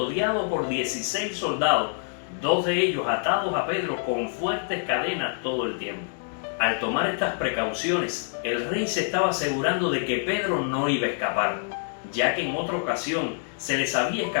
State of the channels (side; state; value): right; silent; digital silence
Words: por 16 soldados, 2 de ellos atados a Pedro con fuertes cadenas todo el tiempo. Al tomar estas precauciones, el rey se estaba asegurando de que Pedro no iba a escapar, ya que en otra ocasión se les había